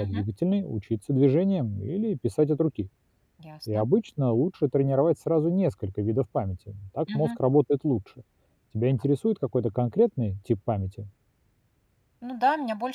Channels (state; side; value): identical; both; correlation 1.00